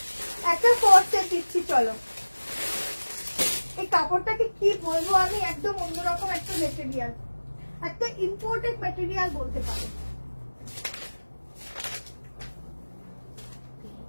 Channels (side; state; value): both; inverted; correlation -1.00